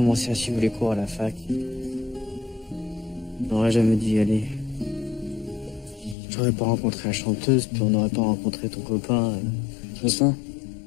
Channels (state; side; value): drops out; right; at 6.2 s